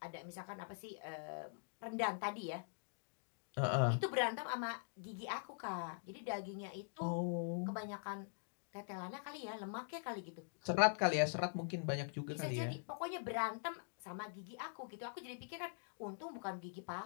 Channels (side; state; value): right; silent; digital silence